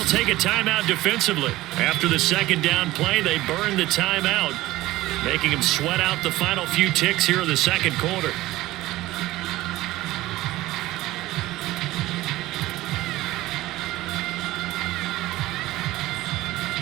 take a timeout defensively. After the 2nd down play, they burn the timeout, making them sweat out the final few ticks here in the 2nd quarter.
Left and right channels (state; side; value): quieter; left; 17.3 dB